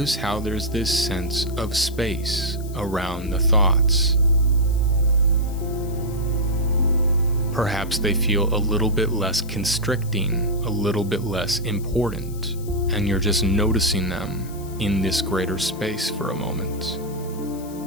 how there's this sense of space around the thoughts. Perhaps they feel a little bit less constricting, a little bit less important, and you're just noticing them in this greater space for a moment.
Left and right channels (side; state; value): left; noise; hiss, 19 dB below the sound